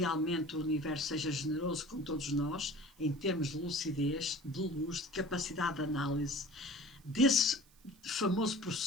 o universo seja generoso com todos nós, em termos de lucidez, de luz, de capacidade de análise, desse famoso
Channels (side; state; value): right; noise; hiss, 29 dB below the sound